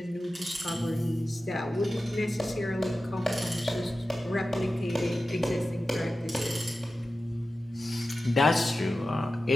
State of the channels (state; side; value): normal; both; correlation 0.94